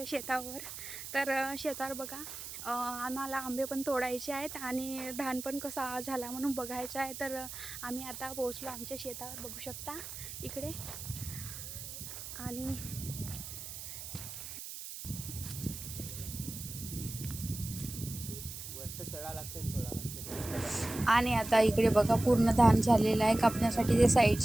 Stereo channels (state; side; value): noise; right; hiss, 9 dB below the sound